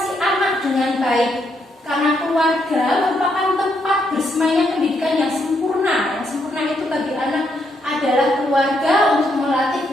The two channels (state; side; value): normal; both; correlation 0.76